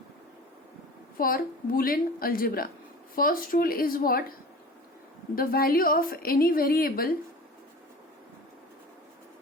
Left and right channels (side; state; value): both; normal; correlation 0.38